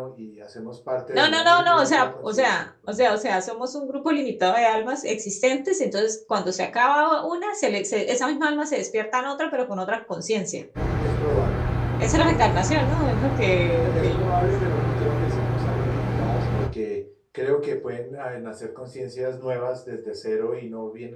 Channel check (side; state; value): both; identical; correlation 1.00